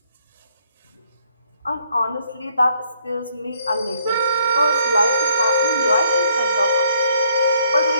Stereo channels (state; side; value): inverted; both; correlation -0.67